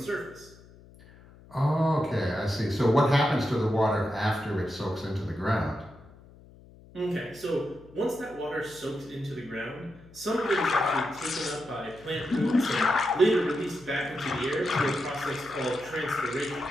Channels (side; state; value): left; noise; hum, 23 dB below the sound